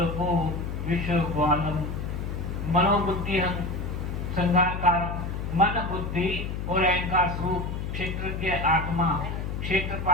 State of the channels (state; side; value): noise; left; hum, 4 dB below the sound